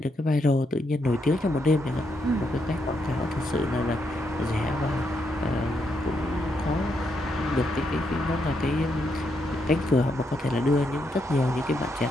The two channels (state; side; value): normal; both; correlation 0.79